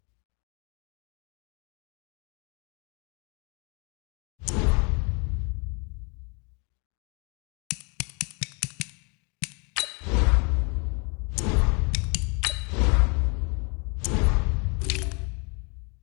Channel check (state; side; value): quieter; right; 33.6 dB